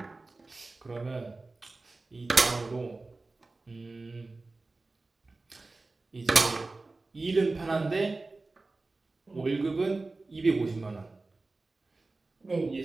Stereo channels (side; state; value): left; quieter; 3.4 dB